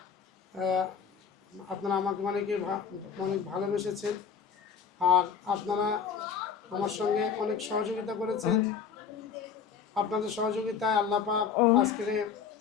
আপনারা আমাকে অনেক ভালোবেসেছেন। আর আপনারা আমার সঙ্গে অনেক সহযোগিতা করেছেন। আপনাদের সহযোগিতায় আল্লাহ পাক আজকের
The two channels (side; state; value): right; quieter; 6.7 dB